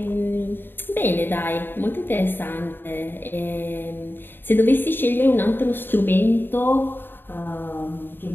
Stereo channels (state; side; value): late; right; 0.097 ms